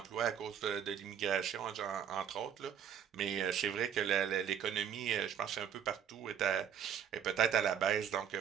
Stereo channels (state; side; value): quieter; left; 8.7 dB